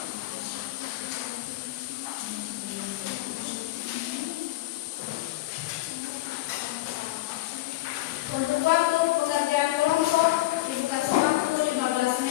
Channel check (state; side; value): quieter; right; 17.4 dB